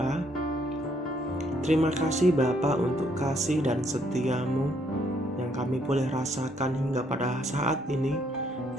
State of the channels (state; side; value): normal; both; correlation 0.70